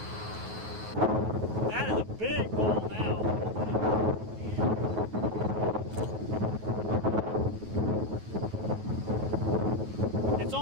That is a big bowl now. It's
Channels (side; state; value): left; late; 9.3 ms